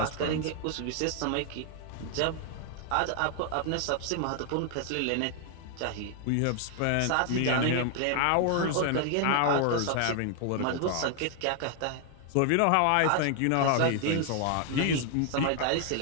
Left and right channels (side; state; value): both; different; correlation 0.00